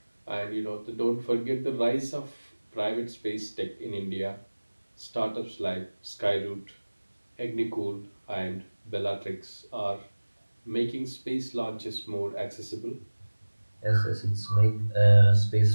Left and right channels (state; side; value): inverted; both; correlation -1.00